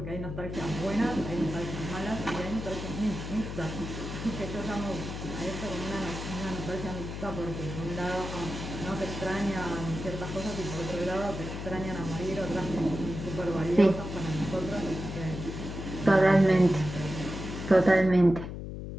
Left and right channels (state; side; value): noise; left; hum, 7 dB below the sound